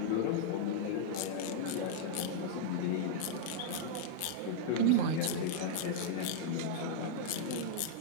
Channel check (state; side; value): different; both; correlation -0.01